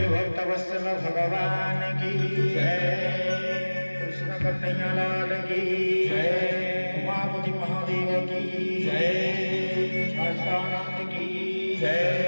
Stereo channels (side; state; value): both; inverted; correlation -1.00